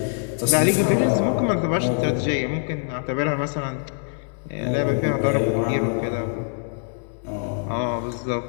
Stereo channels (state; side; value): silent; right; 63 dB below the other